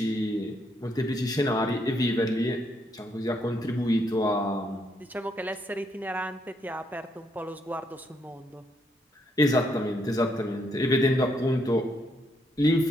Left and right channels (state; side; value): normal; both; correlation 0.74